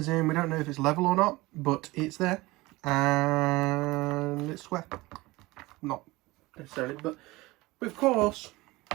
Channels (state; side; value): quieter; left; 21.0 dB